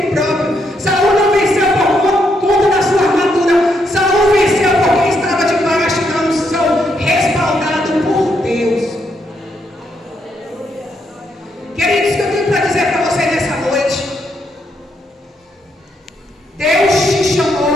próprio. Saul não venceu por conta da sua armadura. Saul venceu porque estava debaixo da unção, respaldado por Deus. Queridos, o que eu tenho para dizer para vocês nessa noite? Deus te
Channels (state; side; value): normal; both; correlation 0.77